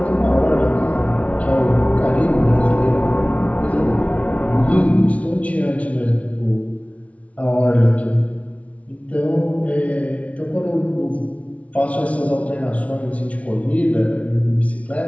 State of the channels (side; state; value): right; late; 0.065 ms